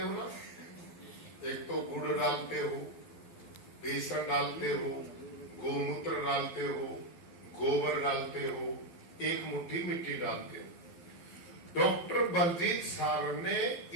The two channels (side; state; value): right; late; 12 ms